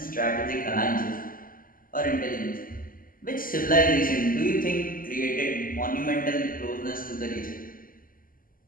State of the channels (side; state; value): right; late; 0.41 ms